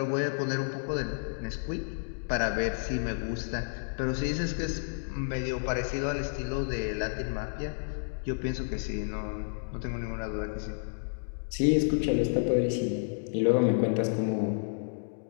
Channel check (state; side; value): silent; right; digital silence